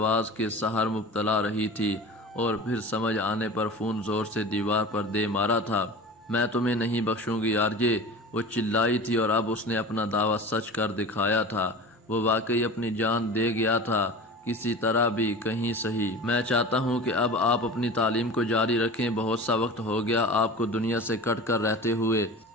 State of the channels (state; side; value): normal; both; correlation 0.35